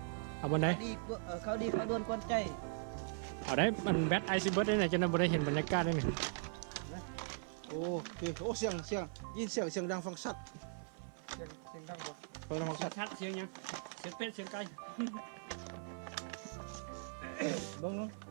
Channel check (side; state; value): left; silent; 51 dB below the other